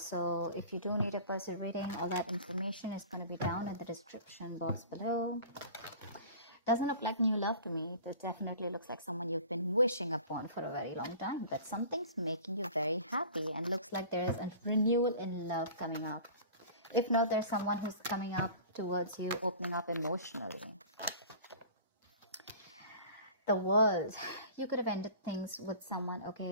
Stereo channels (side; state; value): both; inverted; correlation -0.41